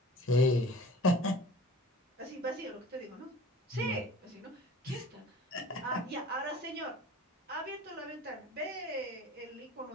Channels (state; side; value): normal; both; correlation 0.43